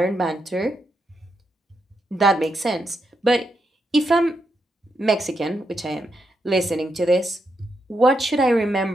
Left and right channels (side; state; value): both; normal; correlation 0.83